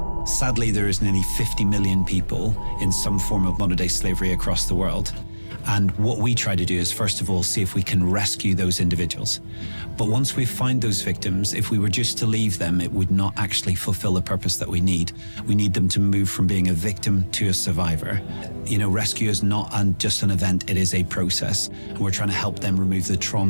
Sadly, there is nearly 50 million people in some form of modern-day slavery across the world. And what we try to do is, first of all, see if we can rescue those individuals. But once we find those victims, if we were just to leave them, it would not actually fulfill the purpose that we need. We need them to move from being a victim to a survivor. You know, rescue is not just an event, it is a process. And we're trying to help them remove the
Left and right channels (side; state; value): both; inverted; correlation -1.00